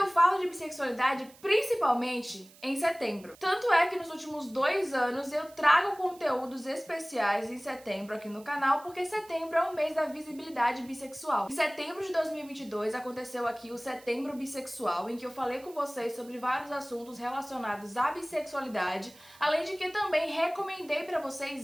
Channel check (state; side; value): noise; right; hiss, 24 dB below the sound